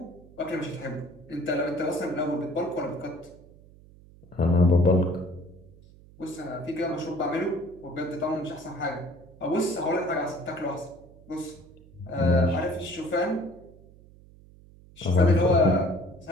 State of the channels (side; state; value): right; noise; hum, 23 dB below the sound